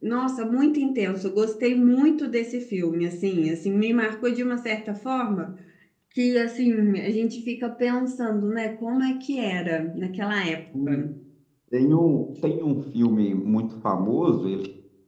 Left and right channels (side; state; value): both; identical; correlation 1.00